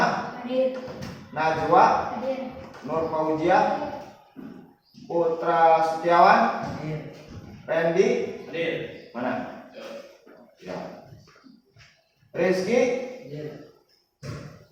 Hadir. Najwa? Hadir. Nur Fauziah? Putra Setiawan? Hadir. Randy? Hadir. Mana? Ya. Rizky? Hadir.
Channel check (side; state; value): both; identical; correlation 1.00